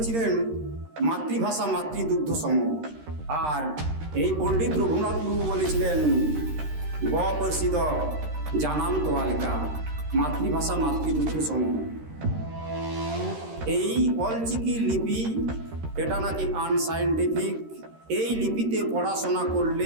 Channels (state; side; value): late; left; 13 ms